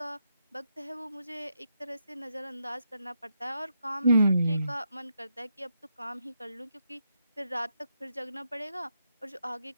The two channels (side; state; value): both; inverted; correlation -0.81